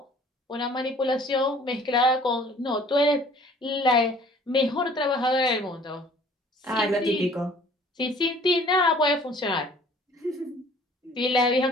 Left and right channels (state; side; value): normal; both; correlation 0.53